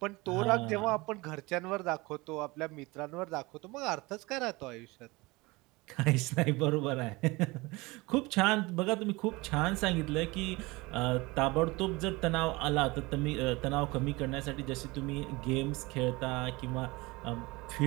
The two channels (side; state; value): left; quieter; 23.2 dB